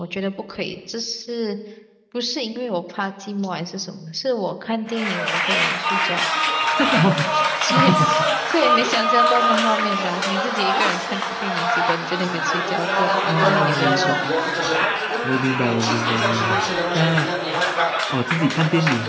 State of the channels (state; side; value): identical; both; correlation 1.00